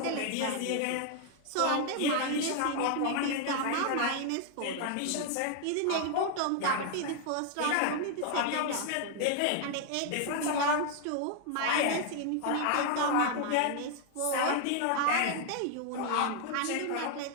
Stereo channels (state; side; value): different; both; correlation 0.00